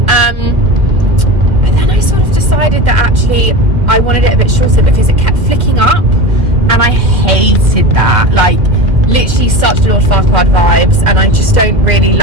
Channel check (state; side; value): late; left; 1.7 ms